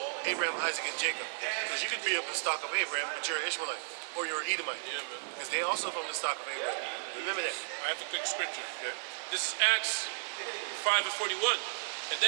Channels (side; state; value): left; silent; 55 dB below the other